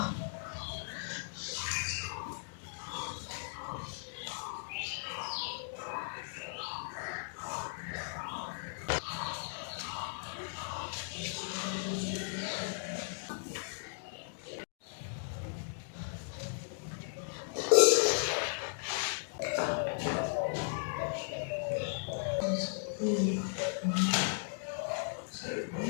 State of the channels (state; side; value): silent; right; digital silence